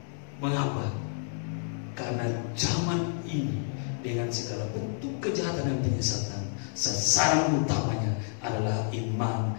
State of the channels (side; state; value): right; silent; digital silence